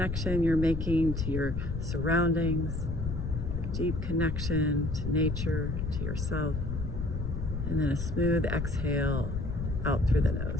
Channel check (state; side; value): noise; left; rumble, 3 dB below the sound